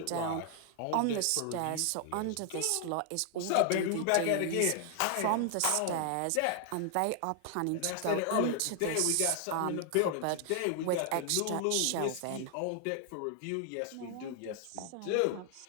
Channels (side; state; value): both; different; correlation 0.00